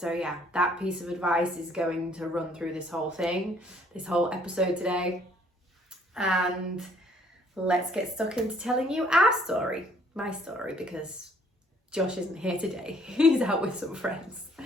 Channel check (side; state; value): both; normal; correlation 0.62